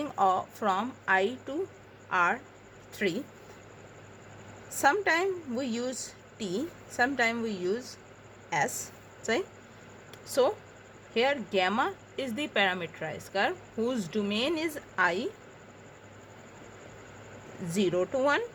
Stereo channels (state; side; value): identical; both; correlation 1.00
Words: of from I to R3. Sometimes we use T, sometimes we use S, right? So here gamma is the parameterized curve whose domain is I 0 to 1